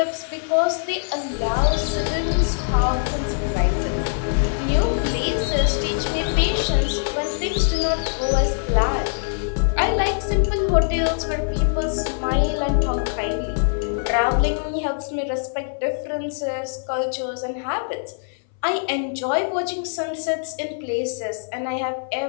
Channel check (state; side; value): silent; right; 60 dB below the other